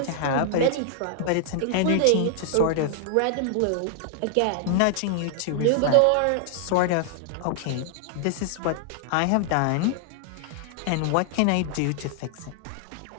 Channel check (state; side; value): different; both; correlation 0.00